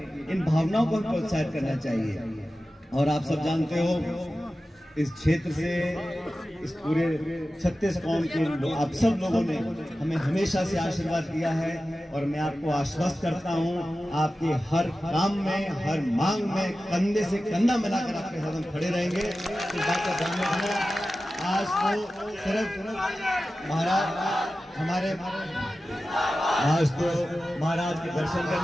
इन भावनाओं को प्रोत्साहित करना चाहिए। और आप सब जानते हो इस क्षेत्र से, इस पूरे 36 कौम के आप सब लोगों ने हमें हमेशा से आशीर्वाद दिया है और मैं आपको आश्वस्त करता हूं, आपके हर काम में, हर मांग में कंधे से कंधा मिलाकर आपके साथ हम खड़े रहेंगे। इस बात का ध्यान रखना। आज तो सिर्फ महाराज के दर्शन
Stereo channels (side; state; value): both; normal; correlation 0.94